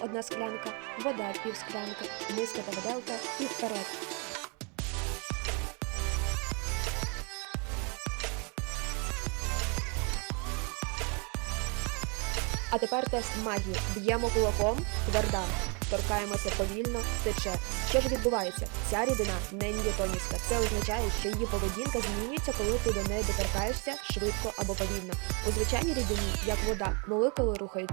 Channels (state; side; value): quieter; left; 33.8 dB